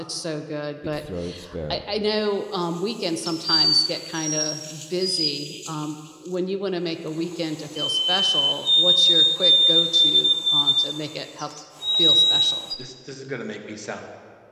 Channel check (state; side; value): identical; both; correlation 1.00